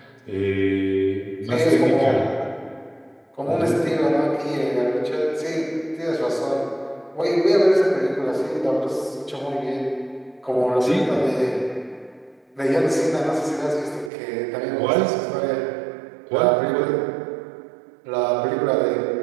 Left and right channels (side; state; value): left; drops out; at 14.1 s